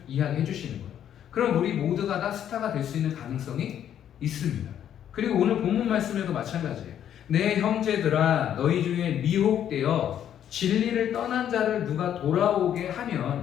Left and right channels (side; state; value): right; quieter; 10.0 dB